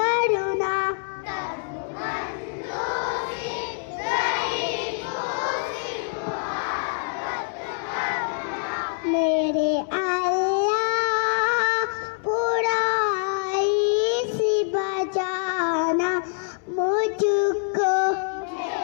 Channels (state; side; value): silent; right; 62 dB below the other